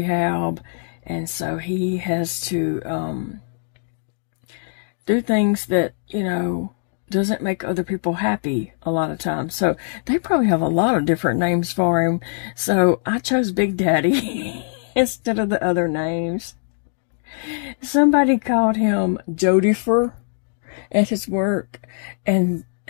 and so he has to do things that, doesn't make other people happy a lot of times. So they probably have a lot of different names for him. So I chose Big Daddy instead of the other names. Somebody called him Jodifer at his work, and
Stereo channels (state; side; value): silent; right; digital silence